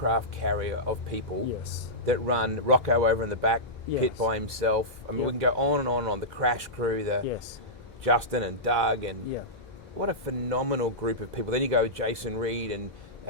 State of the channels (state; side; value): normal; both; correlation -0.14